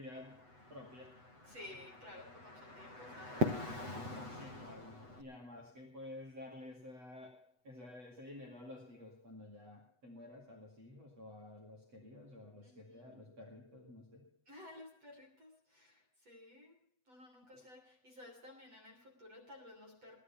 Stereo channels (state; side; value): late; left; 8.1 ms